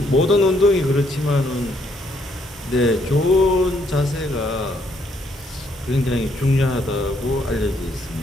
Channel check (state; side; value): normal; both; correlation 0.71